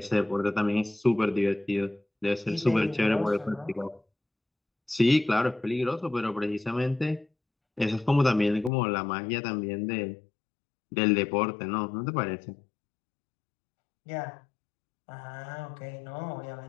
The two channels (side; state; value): right; drops out; at 8.7 s